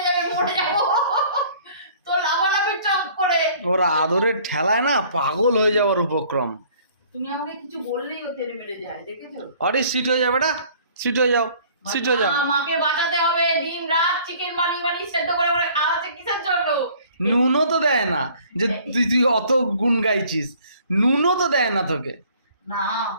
যাবে, মরে যাবো। তো লাভালাভি চক করে ওরা আদরের ঠেলায় না পাগল হয়ে যাওয়ার উপক্রম। তুমি আমাকে কিছু বললেই ও তেরে মেরে যায়, দেখেছো? আরে সিট হয়ে যাবে বেটা, সিট হয়ে যাও, সিট হয়ে যাও। মাকে বাঁচাতে হবে, দিন রাত চিকেন বানিয়ে সেদ্ধ করে করে খাওয়াচ্ছে কিসের জন্য? নুনও তো দেয় না, যে তুই অত গুণ গাইছিস, নুনও তো দেয় না তোকে। না,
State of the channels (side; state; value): both; inverted; correlation -0.54